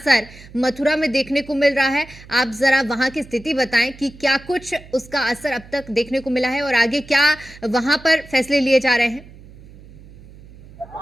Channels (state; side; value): noise; right; hum, 20 dB below the sound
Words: मथुरा में देखने को मिल रहा है। आप जरा वहां की स्थिति बताएं कि क्या कुछ उसका असर अब तक देखने को मिला है और आगे क्या वहां पर फैसले लिए जा रहे हैं।